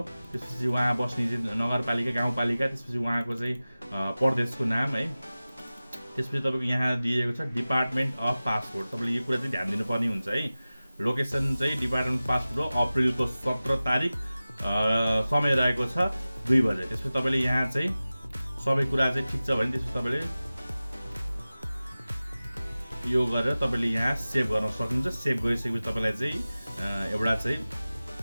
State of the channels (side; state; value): both; inverted; correlation -0.97